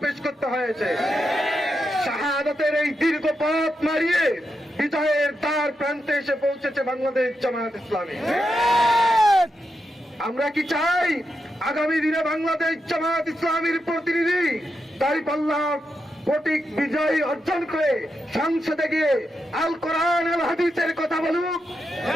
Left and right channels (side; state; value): both; normal; correlation 0.85